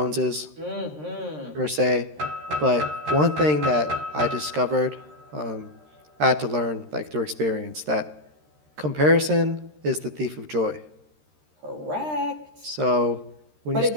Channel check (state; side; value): late; left; 13 ms